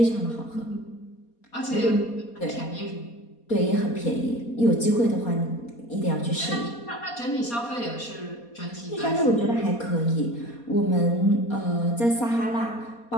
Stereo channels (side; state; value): right; late; 4.2 ms